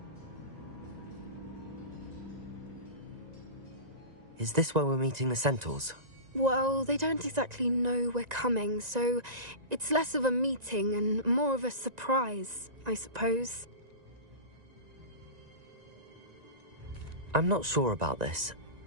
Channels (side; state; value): left; late; 1.9 ms